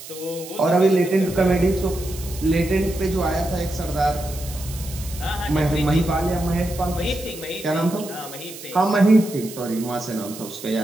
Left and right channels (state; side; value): noise; right; hiss, 14 dB below the sound